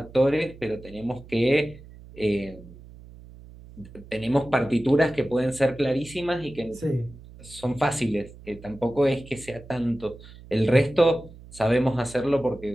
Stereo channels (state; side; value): noise; right; hum, 19 dB below the sound